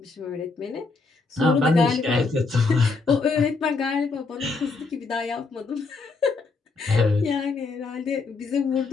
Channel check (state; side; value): quieter; right; 4.1 dB